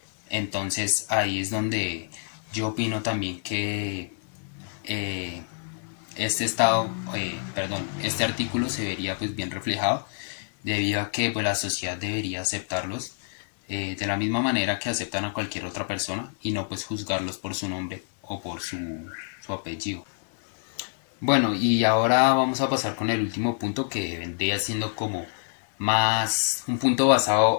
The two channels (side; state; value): right; silent; 60 dB below the other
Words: Entonces ahí es donde yo opino también que eh, este artículo se vería pues bien reflejado debido a que pues, la sociedad debería aceptarlos de la misma manera que aceptan a cualquier otra persona y no pues juzgarlos por su nombre o por su apellido. Bueno, y ahora vamos a pasar con el último punto que vendría siendo como más un punto